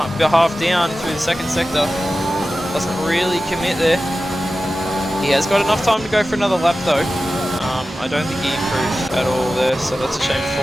half down through the second sector. Doesn't really commit there. He has got enough time to go for another lap though. I don't think he improved at all there, so that's a shame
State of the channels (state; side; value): normal; both; correlation 0.94